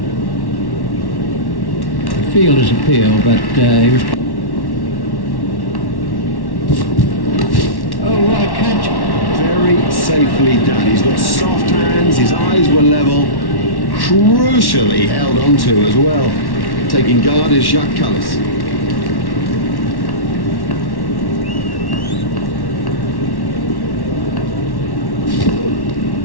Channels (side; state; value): right; late; 1.1 ms